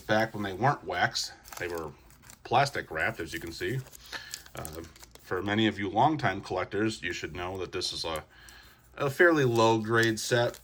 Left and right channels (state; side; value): identical; both; correlation 1.00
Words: when they weren't wax. They were plastic wrapped, as you can see. For many of you longtime collectors, you should know that this is a fairly low grade set,